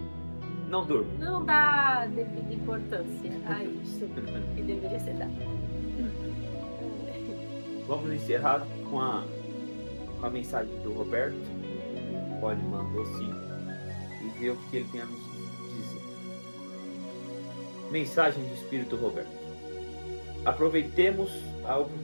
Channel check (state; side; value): inverted; both; correlation -1.00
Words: Não durmo. Não dá devida importância a isso que deveria ser dado. Vamos encerrar com a mensagem do Roberto. Pode mandou sim e ver o que ele tem a nos dizer. Mensagem do Espírito Roberto. Aproveitemos a